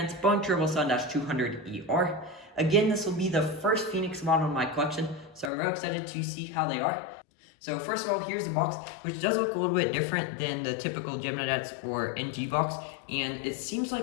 Boeing 777-200ER. Again, this will be the first Phoenix model in my collection, so I'm really excited to see how they are. So first of all, here's the box, which does look a little bit different than the typical Gemini-Jets or NG box, and it seems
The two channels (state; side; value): drops out; right; at 5.5 s